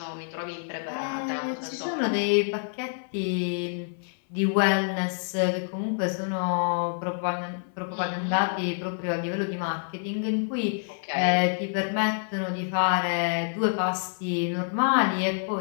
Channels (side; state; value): right; silent; 60 dB below the other